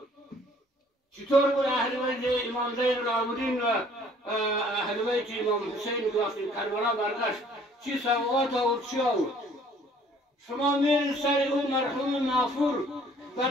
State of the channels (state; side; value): normal; both; correlation 0.57